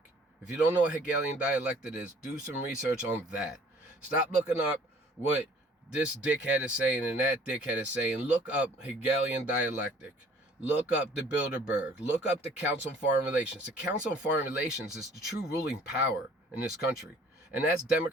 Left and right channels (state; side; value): normal; both; correlation 0.54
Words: If you don't know what Hegelian dialectic is, do some research on that. Stop looking up what this dickhead is saying and that dickhead is saying. Look up Hegelian dialectic. Look up the Bilderberg. Look up the Council on Foreign Relations. The Council on Foreign Relations is the true ruling power in this country. And that's